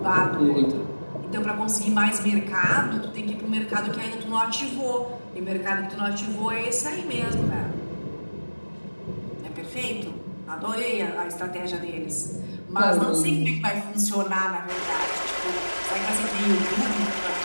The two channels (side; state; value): both; inverted; correlation -1.00